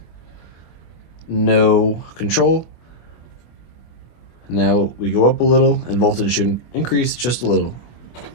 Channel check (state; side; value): late; right; 24 ms